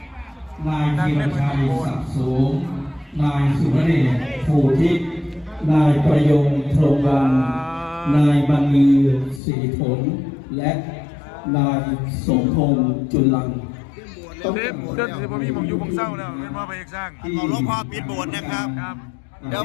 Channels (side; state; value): right; drops out; at 9.4 s